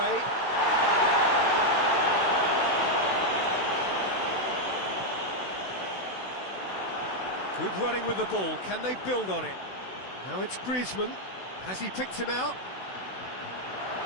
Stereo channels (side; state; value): right; late; 16 ms